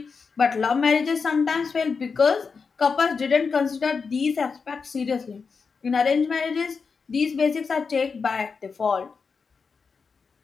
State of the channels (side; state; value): right; quieter; 5.2 dB